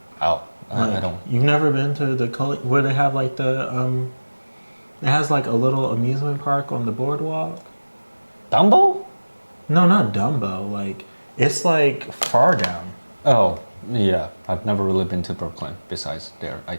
Oh, I Like, don't. You've never been to the where they have like it has like a little amusement park on the boardwalk. Dumbo? No, not Dumbo. Like it's like far down. Oh, yeah. I've never really been to Brooklyn besides their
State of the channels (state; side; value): inverted; both; correlation -1.00